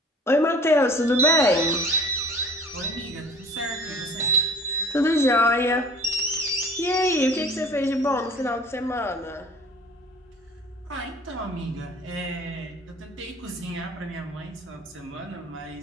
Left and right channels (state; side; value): normal; both; correlation 0.47